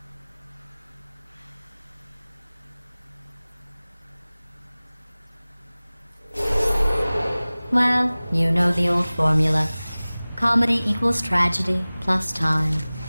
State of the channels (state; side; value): inverted; both; correlation -0.99